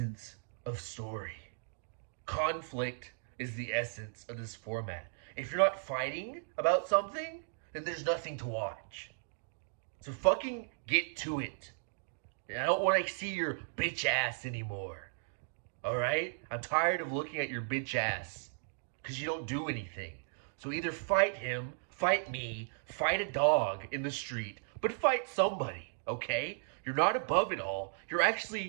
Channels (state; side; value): silent; left; digital silence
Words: of story. Conflict is the essence of this format. If you're not fighting about something, then there's nothing to watch. So fucking get to it. And I don't want to see your bitch ass anymore. Alright? I'm tired of looking at your bitch ass. Because you don't do anything. So either fight him, fight me, fight a dog in the street, but fight somebody, okay? You're not above it all. You're